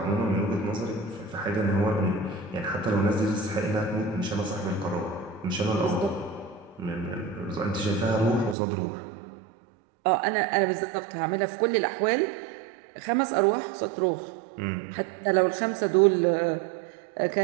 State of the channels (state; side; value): drops out; left; at 8.6 s